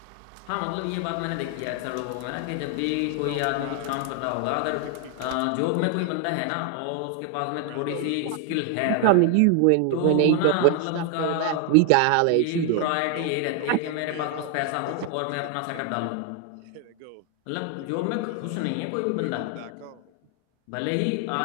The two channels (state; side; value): different; both; correlation 0.00